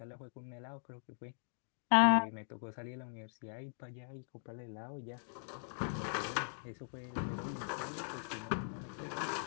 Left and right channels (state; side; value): silent; right; digital silence